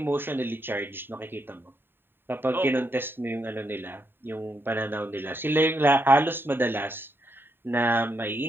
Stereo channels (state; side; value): late; left; 0.10 ms